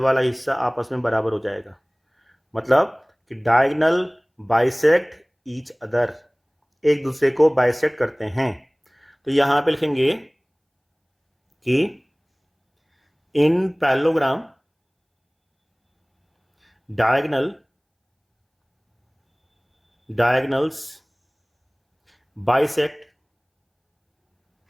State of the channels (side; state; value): both; identical; correlation 1.00